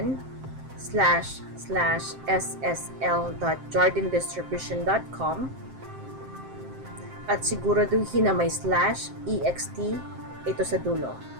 at siguraduhin na may /ext ito sa dulo.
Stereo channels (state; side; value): late; left; 7.6 ms